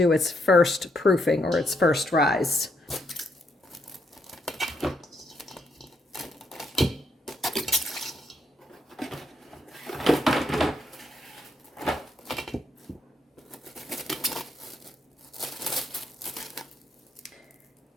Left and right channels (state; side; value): normal; both; correlation 0.76